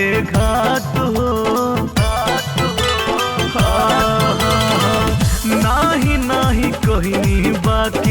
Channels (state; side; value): identical; both; correlation 1.00